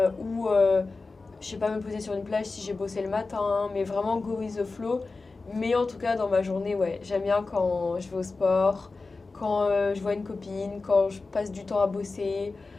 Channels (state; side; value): quieter; right; 3.8 dB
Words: Ou, je sais pas, me poser sur une plage si j'ai bossé le matin. Mais vraiment go with the flow. Mais en tout cas, dans ma journée, ouais, j'aime bien quand je vais au sport, quand je vois une copine, quand je passe du temps à bosser,